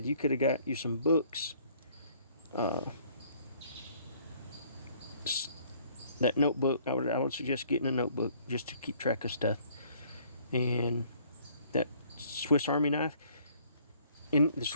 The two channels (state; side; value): inverted; both; correlation -0.60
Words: you could have got you some books, that notebook. I would suggest getting a notebook just to keep track of stuff, and that Swiss Army knife. And the